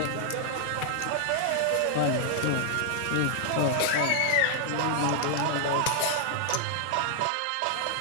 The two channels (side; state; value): both; different; correlation 0.00